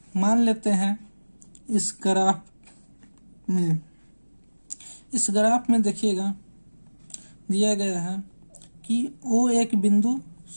मान लेते हैं इस ग्राफ में देखिएगा दिया गया है कि O एक बिंदु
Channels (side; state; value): both; inverted; correlation -1.00